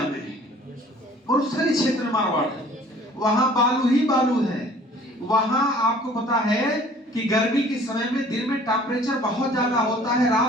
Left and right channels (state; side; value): normal; both; correlation 0.52